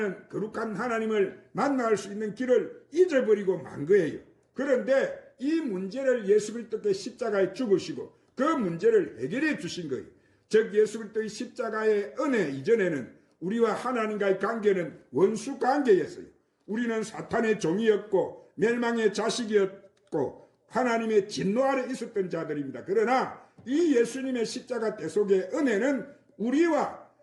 거룩한 하나님을 만날 수 있는 길을 잊어버리고 만 거예요. 그런데 이 문제를 예수 그리스도께 십자가에 죽으시고 그 문제를 해결해 주신 거예요. 즉 예수 그리스도의 십자가의 은혜 이전에는 우리와 하나님과의 관계는 원수 관계였어요. 우리는 사탄의 종이었고 멸망의 자식이었고 하나님의 진노 아래 있었던 자들입니다. 그러나 이 예수님의 십자가 대속의 은혜는 우리와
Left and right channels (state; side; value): identical; both; correlation 1.00